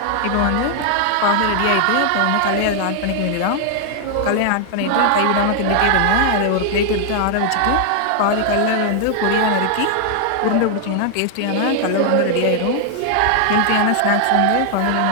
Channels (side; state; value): both; different; correlation 0.00